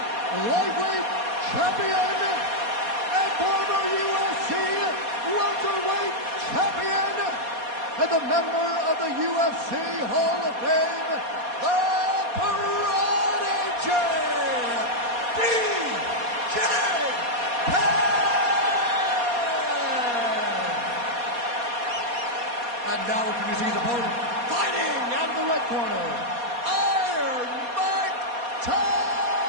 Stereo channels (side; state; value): left; late; 4.2 ms